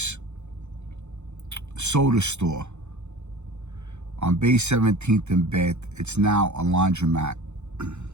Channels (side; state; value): left; late; 0.82 ms